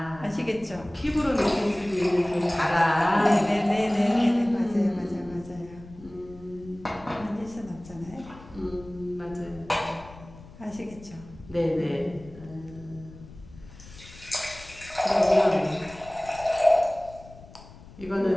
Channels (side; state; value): left; noise; rumble, 19 dB below the sound